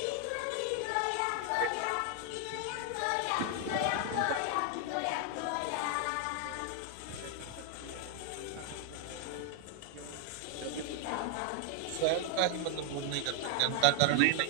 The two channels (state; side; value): different; both; correlation 0.00